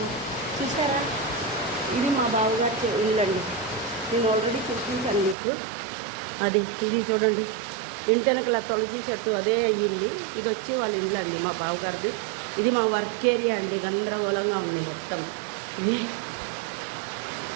చూసారా. ఇది మా బావగారి ఇల్లు అండి, నేను ఆల్రెడీ చూపించాను మీకు. ఇది చూడండి, ఇంటి వెనకల తులసి చెట్టు అదే అయ్యింది. ఇది వచ్చి వాళ్ళ ఇల్లు అండి, మా బావగారిది. ఇది మా వర్క్ ఏరియా అండి, గందరగోళంగా ఉంది మొత్తం.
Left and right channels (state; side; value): drops out; left; at 5.4 s